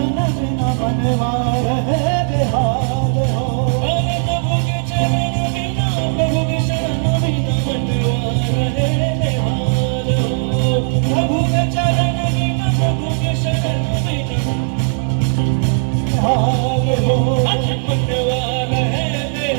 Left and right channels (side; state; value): left; silent; 66 dB below the other